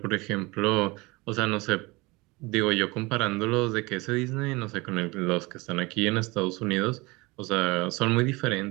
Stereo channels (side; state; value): left; quieter; 23.9 dB